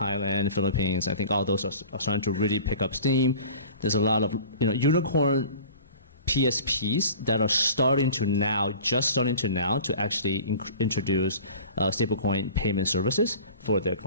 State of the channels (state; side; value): inverted; both; correlation -0.41